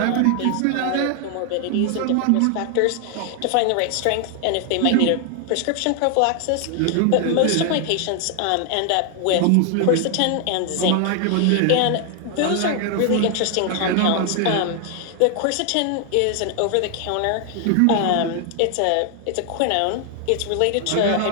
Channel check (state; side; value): different; both; correlation 0.00